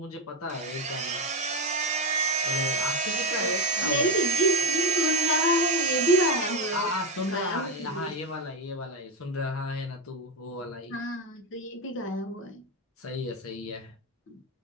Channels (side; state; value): both; normal; correlation 0.12